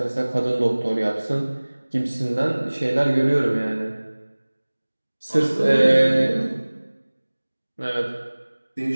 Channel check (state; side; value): inverted; both; correlation -1.00